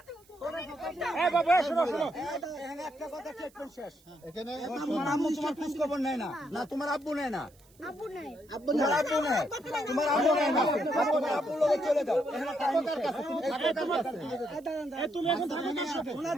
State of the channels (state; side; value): noise; right; hiss, 29 dB below the sound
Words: একটা কথা শেষ। এখানে তোমার আম্মু তোমার খোঁজ খবর নেয় না, না তোমার আব্বু নেয় না? আব্বু নাই। তোমার আব্বু নাই, তোমার আব্বু নাই না, তোমার আব্বুর লগে চলে যাও। তুমি এখন থাকো কার সাথে?